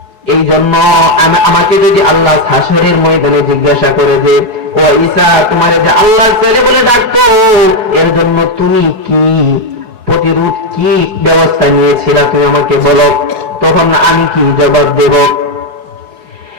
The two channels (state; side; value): late; left; 4.7 ms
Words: এই জন্য আমাকে যদি আল্লাহ হাসরের ময়দানে জিজ্ঞাসা করে যে, ও ঈসা, তোমার যে আল্লাহর ছেলে বলে ডাকতো, এর জন্য তুমি কি প্রতিরোধ, কি ব্যবস্থা নিয়েছিলা, তুমি আমাকে বলো, তখন আমি কি জবাব দেব?